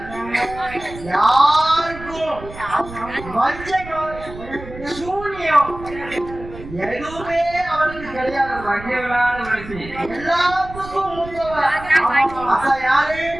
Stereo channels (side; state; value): right; noise; rumble, 14 dB below the sound